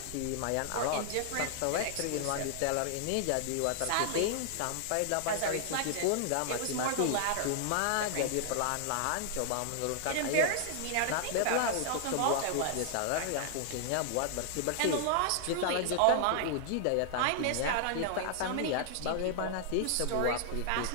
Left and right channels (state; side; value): different; both; correlation -0.01